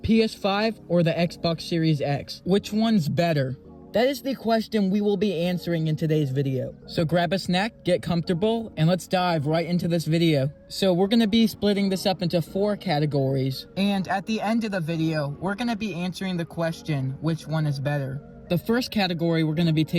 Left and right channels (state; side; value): identical; both; correlation 1.00